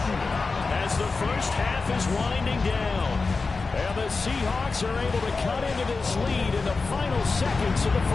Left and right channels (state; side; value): quieter; right; 4.1 dB